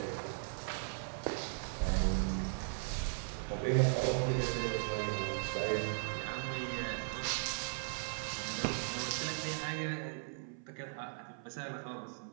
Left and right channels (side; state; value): left; silent; 53 dB below the other